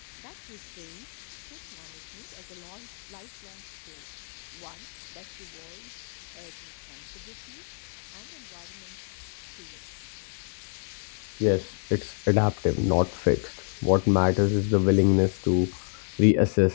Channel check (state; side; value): silent; right; digital silence